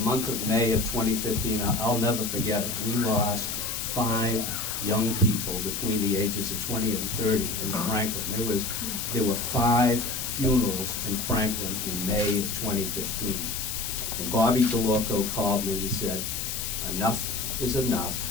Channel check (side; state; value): left; noise; hiss, 4 dB below the sound